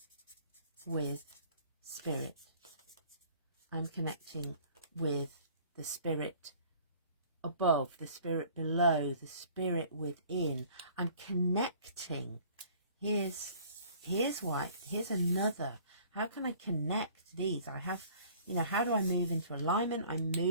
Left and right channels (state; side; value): inverted; both; correlation -0.52